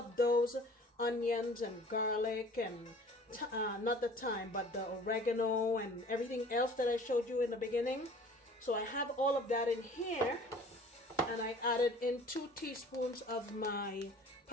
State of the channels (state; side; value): normal; both; correlation 0.48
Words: those onions and garlic and not the thyme, but the oregano and everything else that I showed you in the beginning. So I have all of that in here, and I added in 2 teaspoons of my